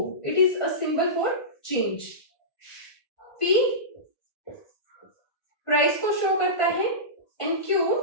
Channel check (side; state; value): right; late; 1.9 ms